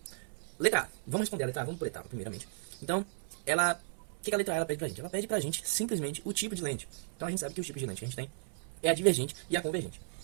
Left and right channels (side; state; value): left; silent; 55 dB below the other